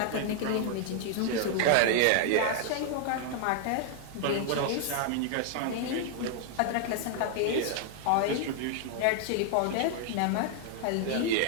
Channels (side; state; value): both; different; correlation 0.00